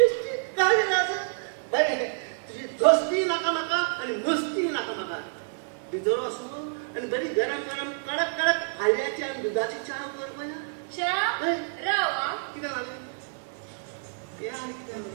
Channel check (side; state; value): left; silent; digital silence